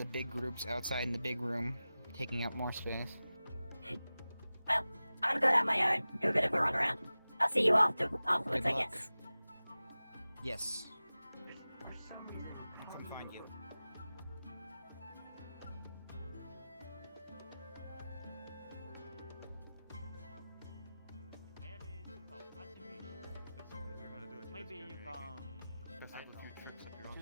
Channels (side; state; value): both; inverted; correlation -0.96